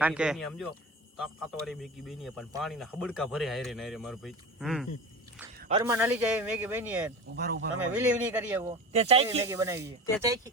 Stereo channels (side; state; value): both; normal; correlation 0.30